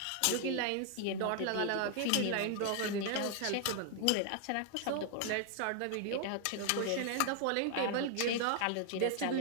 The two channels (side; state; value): both; different; correlation 0.00